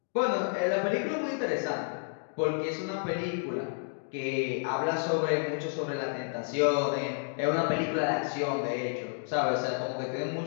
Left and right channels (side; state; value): right; silent; 57 dB below the other